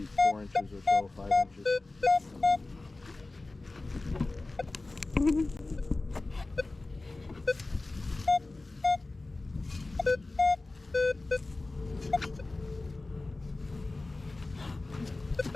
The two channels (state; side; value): quieter; right; 3.2 dB